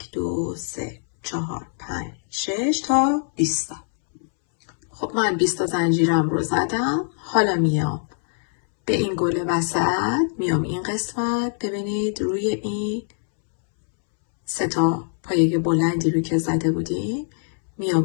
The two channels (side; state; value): right; silent; 63 dB below the other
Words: 2 3 4 5 6 تا 20 تا. خب من 20 تا زنجیرم رو زدم. حالا میام به این گل وسط، میام این قسمت، ببینید روی این 3 تا پایه بلندی رو که زده بودیم،